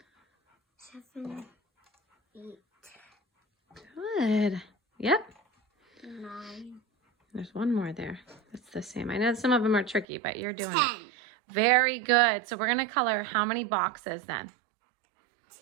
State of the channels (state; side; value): drops out; left; at 10.1 s